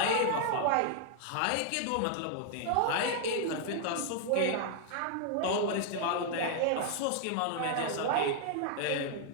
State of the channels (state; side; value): different; both; correlation -0.01